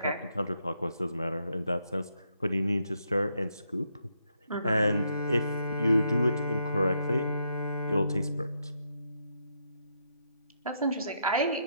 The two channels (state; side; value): inverted; both; correlation -0.77